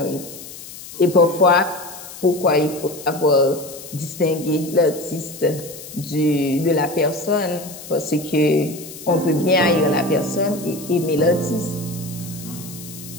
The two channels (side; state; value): left; noise; hiss, 14 dB below the sound